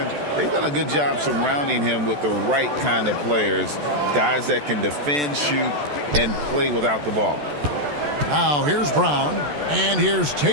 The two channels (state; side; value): late; left; 14 ms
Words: they've done a good job surrounding him with the right kind of players, guys that can defend, shoot, and play without the ball. Now here's Brown, and here's